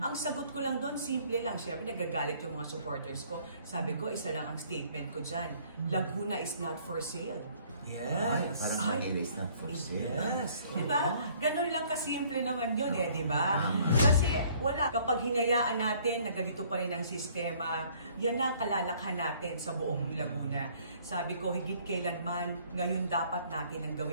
sagot ko lang doon, simple lang. Siyempre, nagagalit yung mga supporters ko. Sabi ko, isa lang ang statement ko dyan. Laguna is not for sale. Yes. Parang Manila is not for sale. Yes. Diba? Ganun lang kasimple naman yun diba? Kasi wala. Kapag hinayaan natin na ganito pa rin ang sistema, yan ang kalalakhan natin sa buong Laguna. Sabi ko, higit kailanman, ngayon dapat natin ang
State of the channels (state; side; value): inverted; both; correlation -0.59